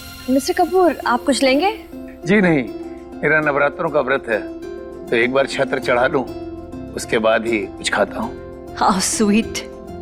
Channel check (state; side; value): identical; both; correlation 1.00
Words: मिस्टर कपूर, आप कुछ लेंगे? जी नहीं, मेरा नवरात्रों का व्रत है, तो एक बार छत्र चढ़ा लूं, उसके बाद ही कुछ खाता हूँ। How sweet.